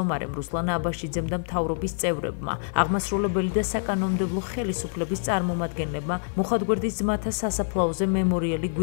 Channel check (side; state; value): right; silent; 61 dB below the other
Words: რუსლან აბაშიძემ და მთავრობის წევრებმა, აღმასრულებელი და საკანონმდებლო ხელისუფლების წარმომადგენლებმა მუხათგვერდის ძმათა სასაფლაოზე მემორიალი